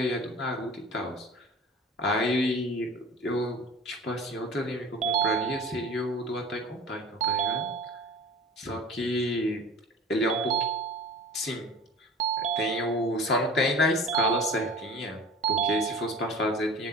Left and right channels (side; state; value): both; normal; correlation 0.39